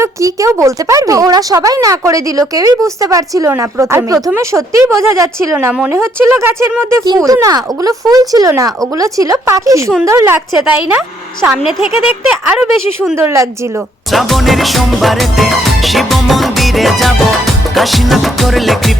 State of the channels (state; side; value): normal; both; correlation 0.69